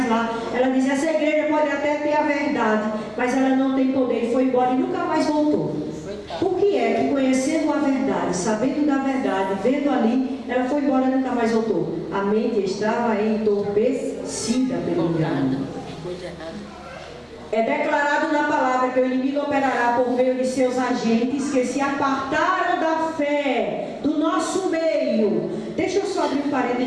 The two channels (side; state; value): both; identical; correlation 1.00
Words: lá. Ela disse, essa igreja pode até ter a verdade, mas ela não tem poder, e foi embora e nunca mais voltou. Por que é que conhecendo a verdade, sabendo da verdade, vendo ali, ela foi embora e nunca mais voltou? A mente estava entorpecida pelo engano. É declarado na palavra que o inimigo operará por meio de seus agentes que se apartaram da fé do nosso meio. Deixa eu só abrir um